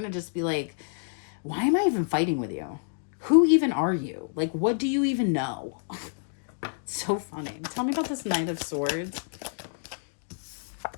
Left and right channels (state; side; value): silent; right; digital silence